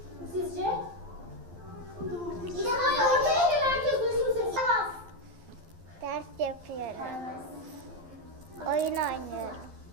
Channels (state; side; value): late; left; 12 ms